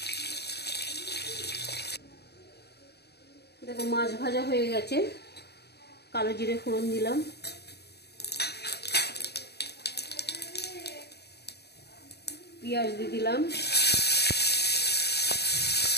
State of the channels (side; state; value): right; late; 0.48 ms